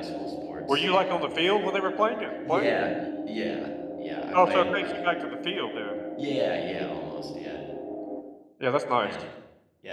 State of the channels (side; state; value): both; identical; correlation 1.00